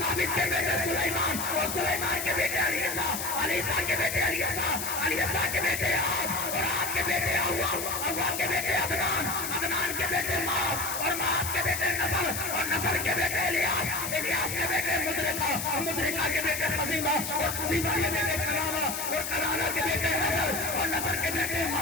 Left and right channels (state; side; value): noise; left; hiss, 4 dB below the sound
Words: کے بیٹے سلیمان اور سلیمان کے بیٹے علیسا کے بیٹے علیسا کے بیٹے عاد اور عاد کے بیٹے عوام کے بیٹے عدنان کے بیٹے ماس اور ماس کے بیٹے نصر اور نصر کے بیٹے الیاس کے بیٹے مدرکہ کے بیٹے خزیمہ اور خزیمہ کے بیٹے کرانا اور کرانا کے بیٹے نصر اور نصر کے بیٹے